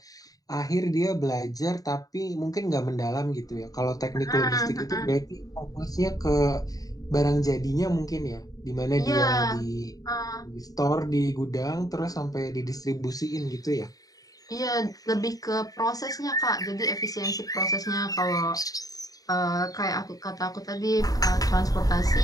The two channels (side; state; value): right; late; 0.18 ms